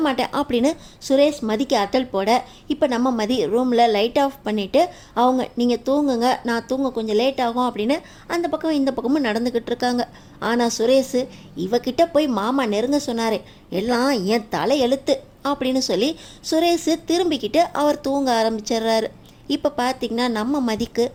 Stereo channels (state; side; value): identical; both; correlation 1.00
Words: மாட்டேன் அப்படின்னு சுரேஷ் மதிக்கு அட்டல் போட, இப்போ நம்ம மதி ரூமில் லைட் ஆஃப் பண்ணிவிட்டு அவங்க, நீங்கள் தூங்குங்க, நான் தூங்க கொஞ்சம் லேட் ஆகும் அப்படின்னு அந்த பக்கம் இந்த பக்கமும் நடந்துக்கிட்டு இருக்காங்க. ஆனால் சுரேஷ், இவகிட்ட போய் மாமா நெருங்க சொன்னார், எல்லாம் என் தலை எழுத்து அப்படின்னு சொல்லி சுரேஷ் திரும்பிக்கிட்டு அவர் தூங்க ஆரம்பிச்சிடுறாரு. இப்போ பார்த்திங்கன்னா நம்ம மதிக்கு,